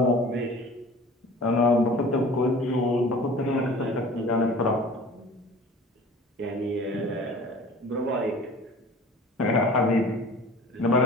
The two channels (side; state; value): both; normal; correlation 0.43